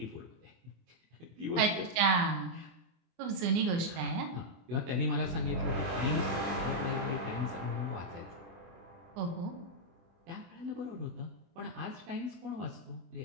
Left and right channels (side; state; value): left; late; 24 ms